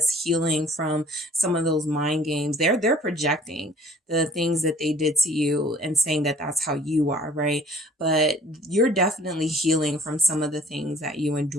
healing from some of those mind games. They're projecting the things that they did to you and saying that that's how you are, right? But you're definitely healing from some of the things that you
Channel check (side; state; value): both; normal; correlation 0.54